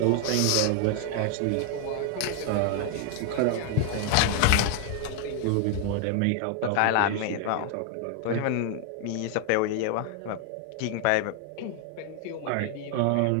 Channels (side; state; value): both; different; correlation 0.00